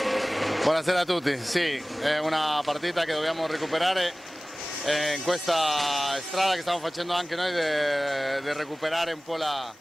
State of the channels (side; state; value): both; normal; correlation 0.98